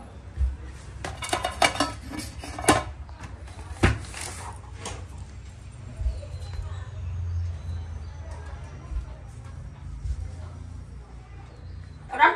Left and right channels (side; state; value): both; identical; correlation 1.00